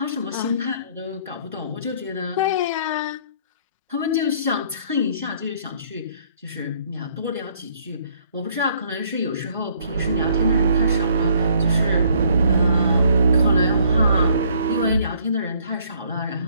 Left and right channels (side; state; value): both; inverted; correlation -0.63